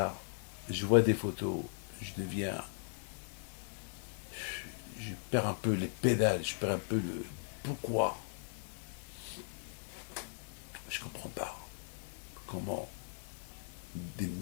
je vois des photos, je perds un peu les pédales, je perds un peu le... Pourquoi? Je ne comprends pas. Comment des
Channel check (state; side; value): silent; right; digital silence